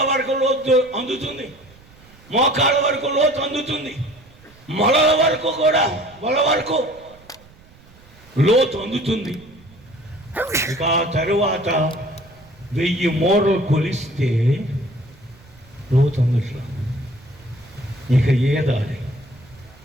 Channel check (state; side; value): noise; right; rumble, 25 dB below the sound